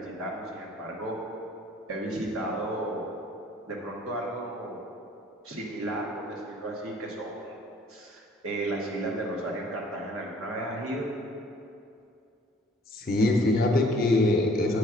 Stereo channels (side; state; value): both; normal; correlation 0.56